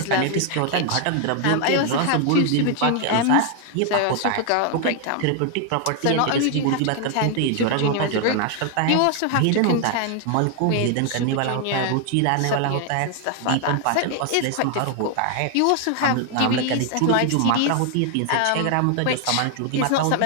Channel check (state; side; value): different; both; correlation 0.00